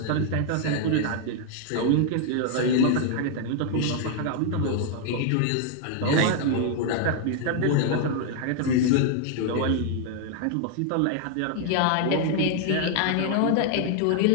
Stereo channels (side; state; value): both; different; correlation 0.00